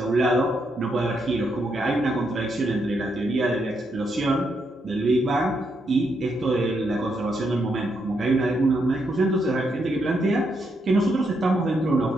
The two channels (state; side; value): normal; both; correlation 0.79